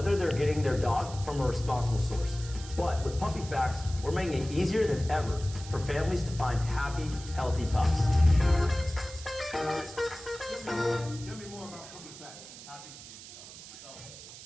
they're getting their dog from a responsible source. But with PuppyFax, we're making it easier than ever for families to find happy, healthy pups. Tell me more about PuppyFax. Happy to do so.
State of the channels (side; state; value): right; noise; hiss, 15 dB below the sound